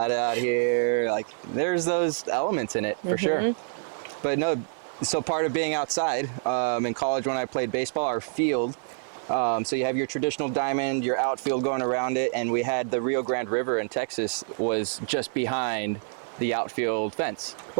out here. Like, there's those elements in it for sure. But no, so part of being outside, in college when I played baseball, our field, so you have your traditional diamond, your outfield going around it, and we had the Rio Grande River in Texas was just behind the outfield fence.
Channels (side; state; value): left; silent; 58 dB below the other